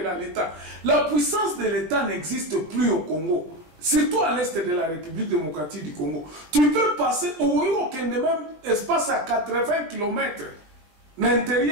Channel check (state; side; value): late; left; 20 ms